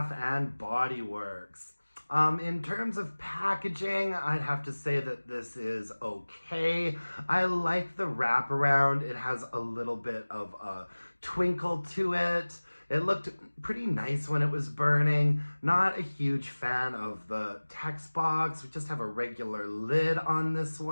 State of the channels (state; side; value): inverted; both; correlation -1.00